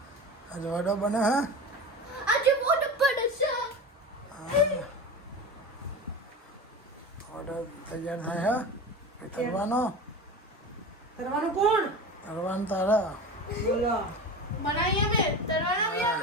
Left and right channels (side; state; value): both; normal; correlation 0.29